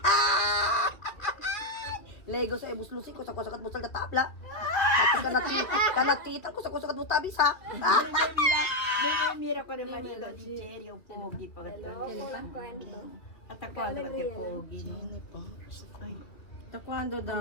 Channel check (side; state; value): right; late; 2.6 ms